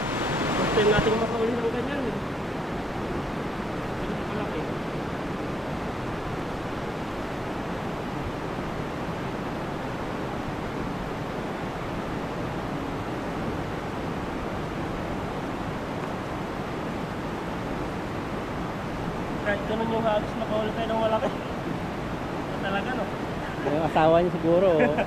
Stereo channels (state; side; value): normal; both; correlation 0.90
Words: time natin makauli ng ganyan. Ganyan malaki. Kahit ganun yung hagis, makauli tayo ng malaki. Ito talaga no? Yung asawa niya siguro.